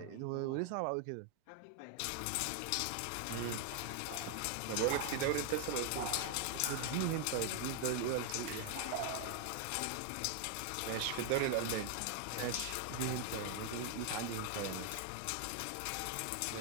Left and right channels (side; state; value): both; different; correlation 0.00